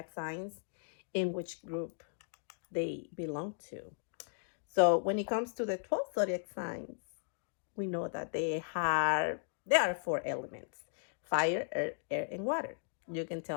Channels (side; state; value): right; silent; digital silence